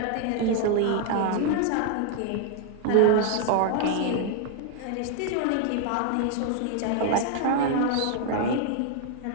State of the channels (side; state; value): both; different; correlation 0.00